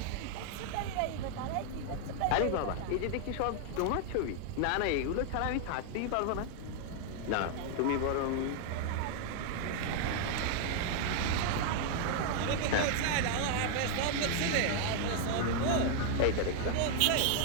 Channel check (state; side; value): different; both; correlation 0.00